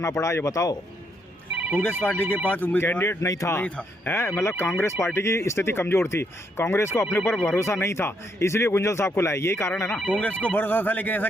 पड़ा, ये बताओ। कांग्रेस पार्टी के पास कैंडिडेट नहीं था है, मतलब कांग्रेस पार्टी की स्थिति कमजोर थी, कांग्रेस को अपने ऊपर भरोसा नहीं था, इसलिए गुंजल साहब को लाए, यही कारण है ना? कांग्रेस को भरोसा था, लेकिन ऐसा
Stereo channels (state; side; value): normal; both; correlation 0.75